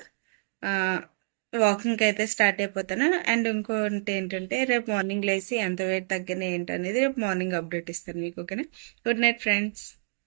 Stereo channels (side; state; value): left; silent; digital silence